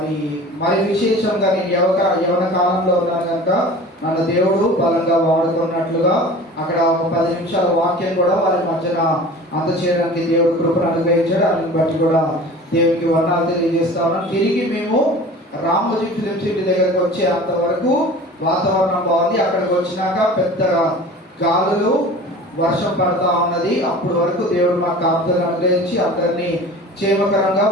మరి విశేషంగా నేను యవన కాలంలో ఉన్నాను కనుక నన్ను దేవుడు బలంగా వాడుకున్నట్లుగా అక్కడ ఒక 10 నిమిషాల వాక్యం కూడా వారి మధ్యన అందచేయడానికి దేవుడు కృపను అనుగ్రహించాడు. దాన్ని బట్టి కూడా దేవునికి వందనాలు తెలియజేస్తా ఉన్నాం. తిరిగి మేము రామోజీ ఫిలిం సిటీ దగ్గరకు వచ్చే అంతవరకు వాతావరణం బాగుంది. అక్కడికి వచ్చినాక పెద్దగా గాలులు, వర్షం పడతా ఉన్నది. అప్పటి వరకు దేవుడు మా కాపుదలను అనుగ్రహించి అందరినీ క్షేమకరంగా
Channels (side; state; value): both; normal; correlation 0.40